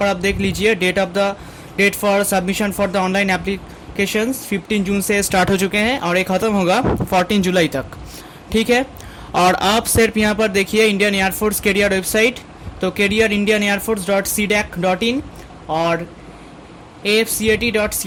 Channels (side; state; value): both; identical; correlation 1.00